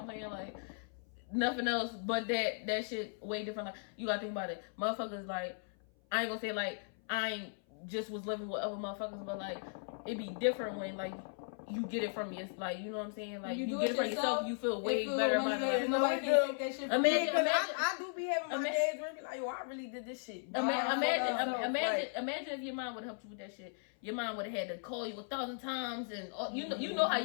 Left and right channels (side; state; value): right; silent; 53 dB below the other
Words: I'm saying? Like, nothing else but that shit way different. Like, you gotta think about it. Motherfuckers, like, I ain't gonna say, like, I ain't just was living with other motherfuckers, but, like, it be different when, like, you get it from your, like, you know what I'm saying? Like, you get it from yourself, you feel way better about it. Nobody can take that shit from you. Imagine, I do be having my days where I be like, yo, I really did this shit. Imagine if your mom would have helped you with that shit. Your mom would have had to call you 1,000 times, and you know how